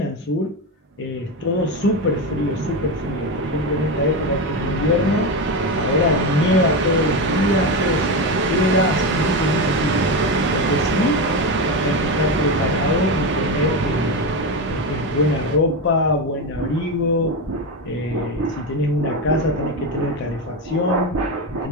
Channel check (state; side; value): normal; both; correlation 0.15